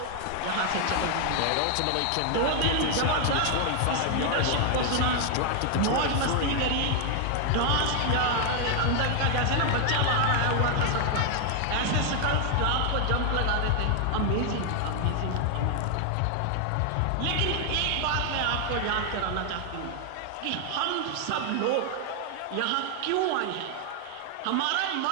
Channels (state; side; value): different; both; correlation 0.00